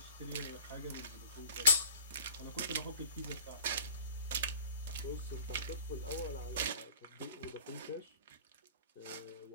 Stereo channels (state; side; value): inverted; both; correlation -0.44